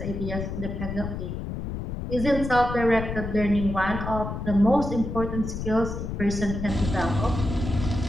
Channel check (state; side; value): noise; left; rumble, 5 dB below the sound